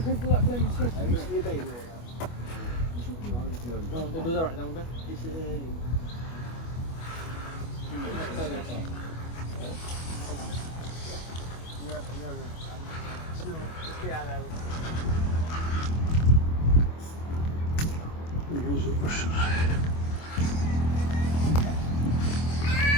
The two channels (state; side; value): late; right; 25 ms